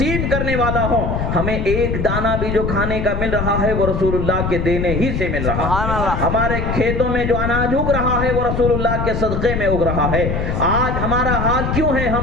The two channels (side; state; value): left; noise; rumble, 2 dB below the sound